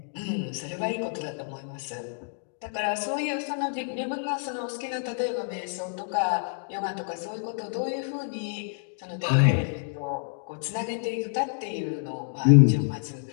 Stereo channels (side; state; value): right; silent; digital silence